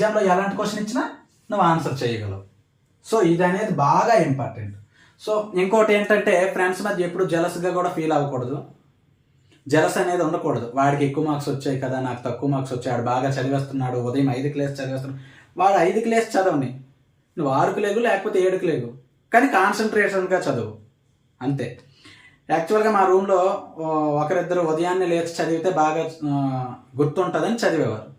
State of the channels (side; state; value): both; identical; correlation 1.00